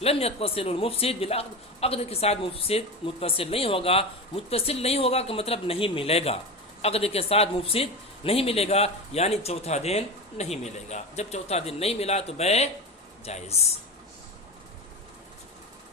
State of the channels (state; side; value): normal; both; correlation 0.23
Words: لم يتصل المفسد بالعقد، عقد کے ساتھ مفسد متصل نہیں ہوگا کا مطلب نہیں ملے گا، عقد کے ساتھ مفسد نہیں ملے گا یعنی چوتھا دن نہیں ملے گا. جب چوتھا دن نہیں ملا تو بے جائز.